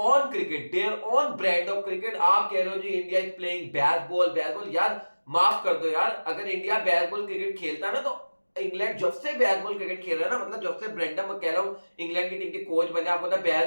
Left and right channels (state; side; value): inverted; both; correlation -1.00